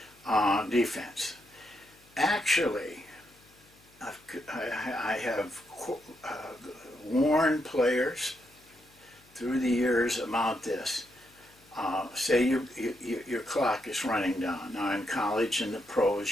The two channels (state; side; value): noise; left; hum, 29 dB below the sound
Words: defense. Actually, I have warned players through the years about this. Say your clock is running down. Now in college and the